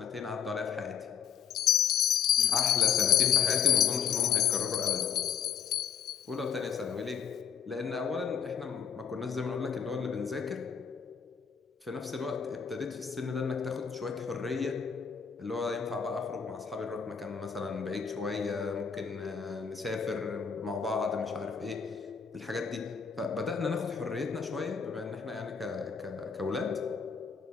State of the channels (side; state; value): right; quieter; 7.7 dB